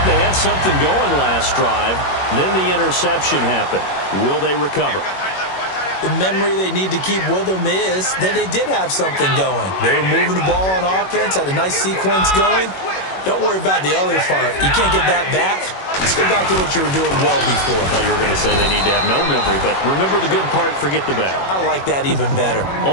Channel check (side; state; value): right; late; 21 ms